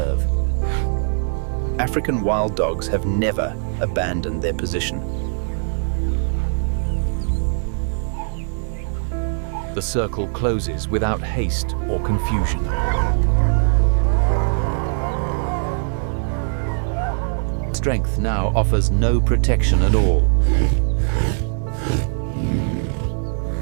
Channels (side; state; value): left; silent; digital silence